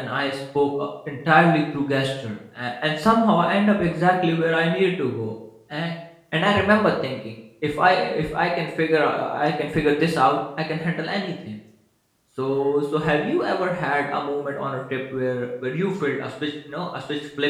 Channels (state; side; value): identical; both; correlation 1.00